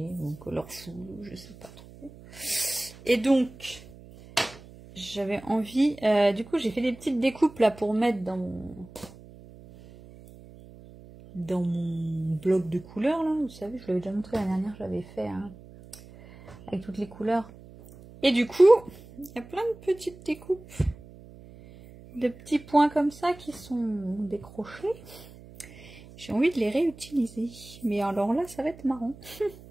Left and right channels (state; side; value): noise; right; hum, 19 dB below the sound